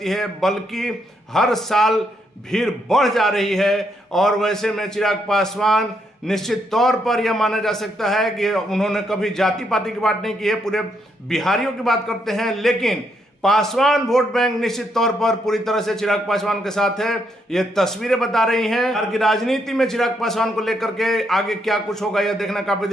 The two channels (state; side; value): normal; both; correlation 0.76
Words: है, बल्कि हर साल भीड़ बढ़ जा रही है। और वैसे में चिराग पासवान निश्चित तौर पर यह माना जा सकता है कि उन्होंने कभी जाति पाति की बात नहीं की है, पूरे बिहारियों की बात करते हैं। लेकिन पासवान वोट बैंक निश्चित तौर पर पूरी तरह से चिराग पासवान के साथ है। ये तस्वीरें बता रही हैं बिहार की राजनीति में चिराग पासवान को लेकर के आगे क्या कुछ होगा, यह देखना काफी